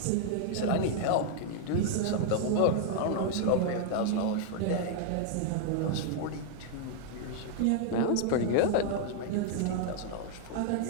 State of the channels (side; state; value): both; different; correlation 0.00